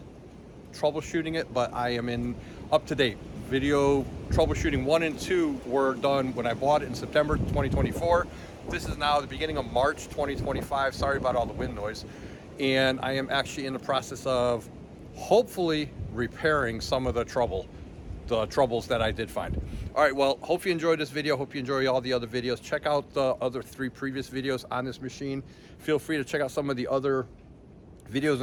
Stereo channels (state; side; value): identical; both; correlation 1.00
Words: troubleshooting it, but I am in up to date. Video troubleshooting 1 and 2 were done when I bought it in September 2024. This is now the beginning of March 2025. Sorry about all the wind noise. And I am actually in the process of hopefully repairing some of the troubles that I did find. All right, well, hope you enjoyed this video. Hope you enjoy all the other videos. Check out the other 3 previous videos on this machine. Feel free to check out some of the other videos